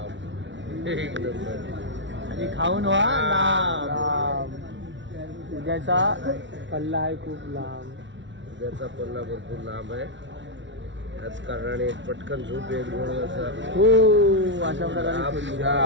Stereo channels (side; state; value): left; late; 0.54 ms